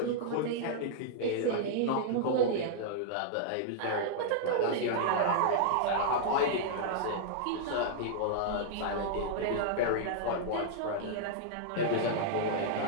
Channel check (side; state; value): both; different; correlation -0.01